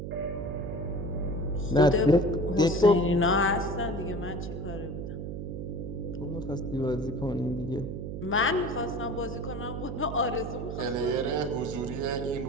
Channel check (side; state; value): right; noise; hum, 6 dB below the sound